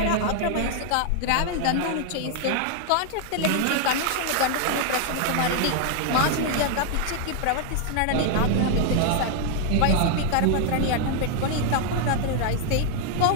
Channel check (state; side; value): different; both; correlation 0.00